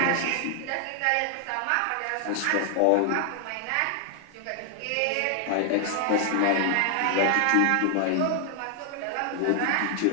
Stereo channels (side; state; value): both; different; correlation 0.00